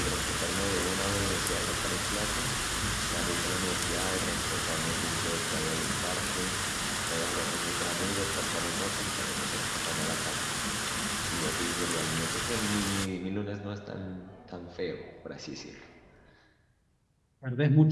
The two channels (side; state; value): both; identical; correlation 1.00